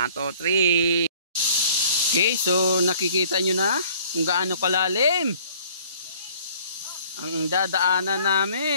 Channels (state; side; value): inverted; both; correlation -0.55